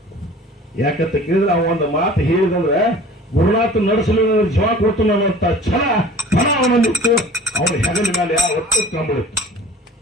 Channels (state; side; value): normal; both; correlation 0.45